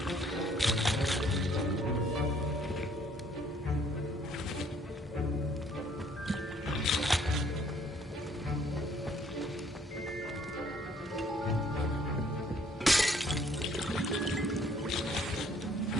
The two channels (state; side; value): normal; both; correlation 0.62